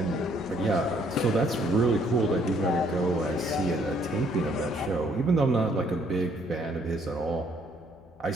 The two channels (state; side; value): noise; left; hum, 28 dB below the sound